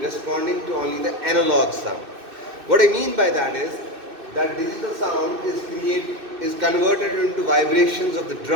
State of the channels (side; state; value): left; late; 2.6 ms